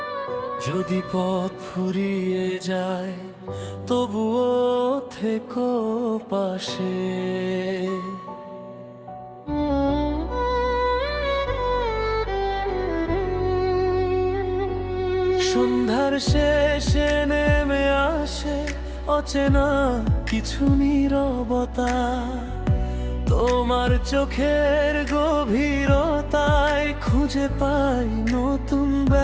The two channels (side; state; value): both; identical; correlation 1.00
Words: যদি পথ ফুরিয়ে যায় তবুও থেকো পাশে। সন্ধ্যার শেষে নেমে আসে অচেনা কিছু নীরবতা, তোমার চোখের গভীরতায় খুঁজে পাই নতুন